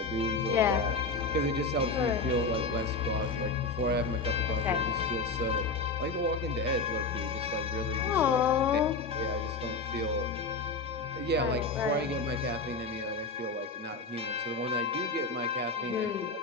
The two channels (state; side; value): quieter; right; 3.8 dB